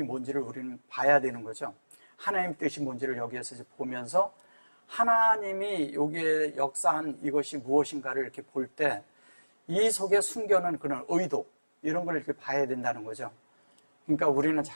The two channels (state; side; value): inverted; both; correlation -1.00